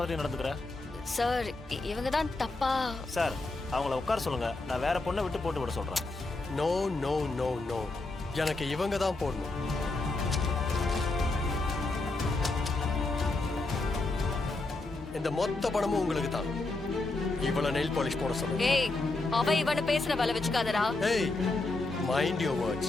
மாதிரி நடந்துக்கிற? சார், இவங்க தான் தப்பா. சார், அவங்கள உட்கார சொல்லுங்க, நான் வேற பொண்ணை விட்டு போட்டு விட சொல்றேன். நோ நோ நோ நோ, எனக்கு இவங்க தான் போடணும். இந்த மொத்த பணமும் உங்களுக்கு தான். இவள நெயில் பாலிஷ் போட சொல்லுங்க. ஏய், அவ இவனை பேசுற வேலை வச்சுக்காதடா. ஏய், mind your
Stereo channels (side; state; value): right; quieter; 3.2 dB